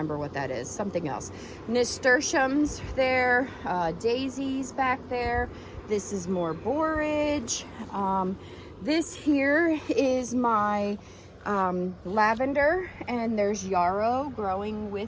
what that is, something else. Nasturtiums there, daisies back there. This is more borage. This here is my lavender, and there's yarrow growing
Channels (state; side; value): identical; both; correlation 1.00